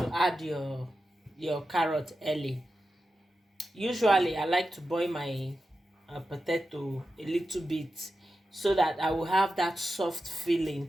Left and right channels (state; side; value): normal; both; correlation 0.91